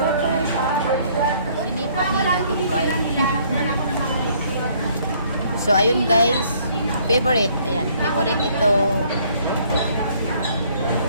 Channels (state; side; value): inverted; both; correlation -0.62